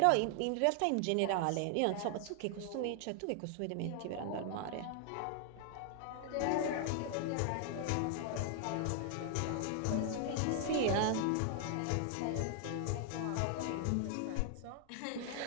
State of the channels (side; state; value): both; different; correlation 0.00